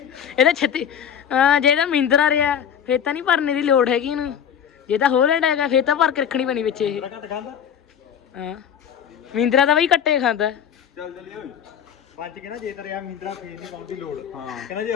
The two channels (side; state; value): right; quieter; 8.4 dB